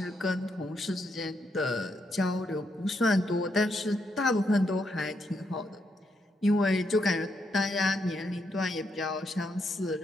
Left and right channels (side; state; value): both; normal; correlation 0.79